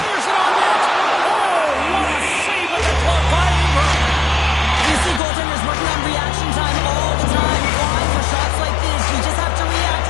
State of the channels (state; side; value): drops out; right; at 5.2 s